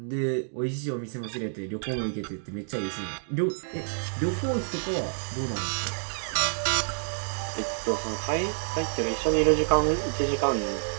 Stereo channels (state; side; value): silent; left; digital silence